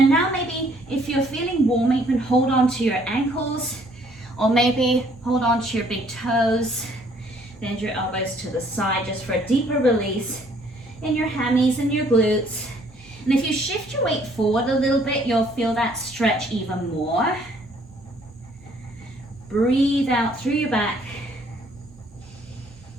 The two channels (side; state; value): both; normal; correlation 0.62